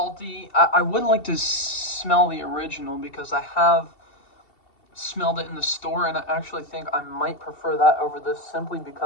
I would like to smell the original because I have smelled it in the store, and I actually think I might prefer that over this simply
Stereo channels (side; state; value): right; late; 2.7 ms